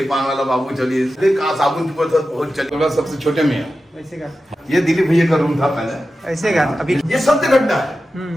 का ये दिलीप भैया का रूम था पहले, ऐसे का अभी ये सत्य घटना है।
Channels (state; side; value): normal; both; correlation 0.93